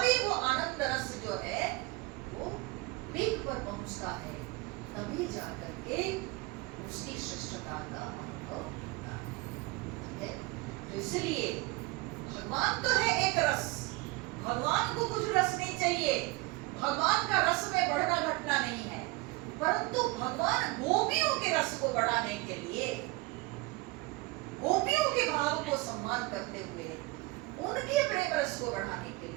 वो आनंद रस जो है वो पीक पर पहुंचता है, तभी जाकर के उसकी श्रेष्ठता का अनुभव होता है। ठीक है, तो इसलिए भगवान तो है एक रस, भगवान को कुछ रस नहीं चाहिए, भगवान का रस में बढ़ना घटना नहीं है, परंतु भगवान गोपियों के रस को बढ़ाने के लिए, गोपियों के भाव को सम्मान करते हुए, उनके प्रेम रस को बढ़ाने के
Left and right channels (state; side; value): quieter; left; 22.7 dB